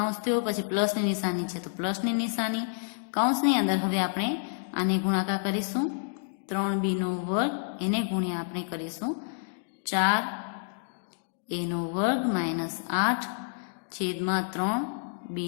થયો, પછી પ્લસની નિશાની છે તો પ્લસની નિશાની, કૌંસની અંદર હવે આપણે આને ગુણાકાર કરીશું 3b નો વર્ગ, એને ગુણ્યા આપણે કરીશું 4a નો વર્ગ માઇનસ 8 છેદમાં 3b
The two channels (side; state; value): right; silent; digital silence